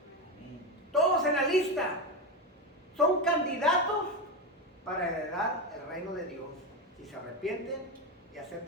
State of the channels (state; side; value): normal; both; correlation 0.15